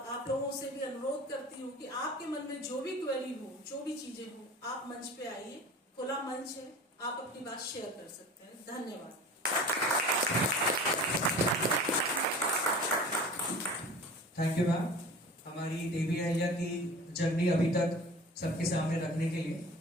आप लोगों से भी अनुरोध करती हूँ कि आपके मन में जो भी क्वेरी हो, जो भी चीजें हो, आप मंच पे आइए, खुला मंच है, आप अपनी बात शेयर कर सकते हैं। धन्यवाद। थैंक यू मैम, हमारी देवी अहिल्या की जर्नी अभी तक सबके सामने रखने के लिए।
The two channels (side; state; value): both; normal; correlation 0.40